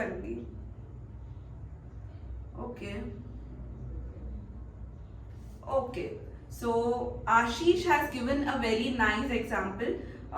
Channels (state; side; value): identical; both; correlation 1.00